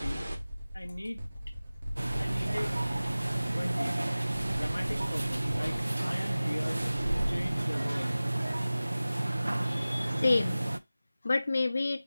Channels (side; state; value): both; inverted; correlation -0.97